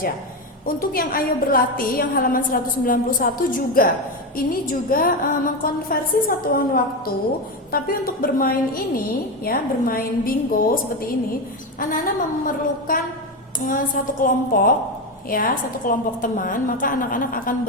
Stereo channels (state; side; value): normal; both; correlation 0.14